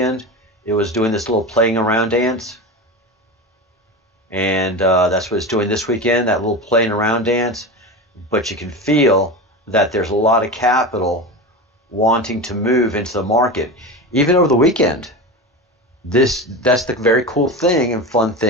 It was doing this little playing around dance. And that's what it's doing this weekend, that little playing around dance. But you can feel that there's a lot of capital wanting to move into the market, even over the weekend. That's the very cool thing and fun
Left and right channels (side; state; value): both; normal; correlation 0.24